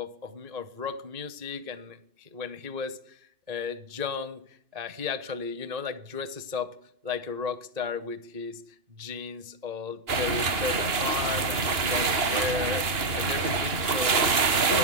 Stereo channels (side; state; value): left; late; 2.8 ms